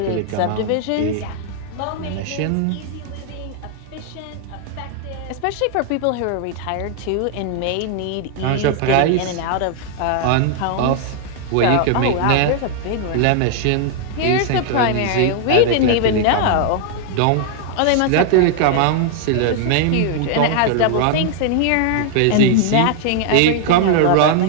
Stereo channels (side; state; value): both; different; correlation 0.00